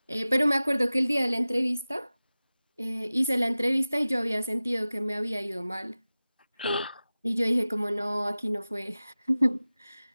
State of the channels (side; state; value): both; inverted; correlation -0.97